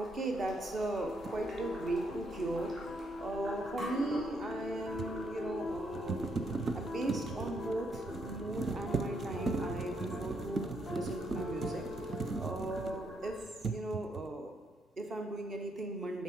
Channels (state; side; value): normal; both; correlation 0.75